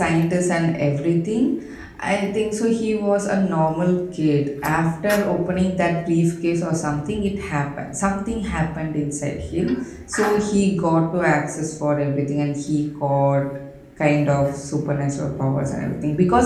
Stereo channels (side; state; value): both; identical; correlation 1.00